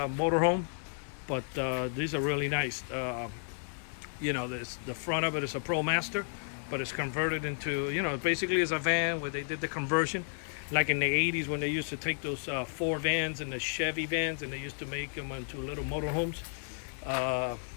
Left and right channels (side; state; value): right; silent; 56 dB below the other